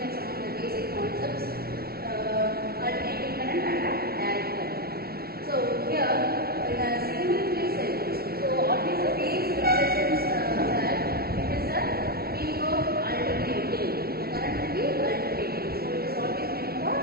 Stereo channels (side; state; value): left; late; 0.44 ms